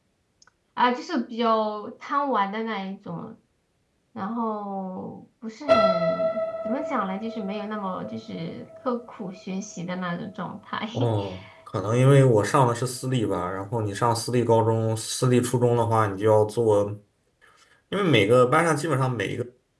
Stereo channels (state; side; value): identical; both; correlation 1.00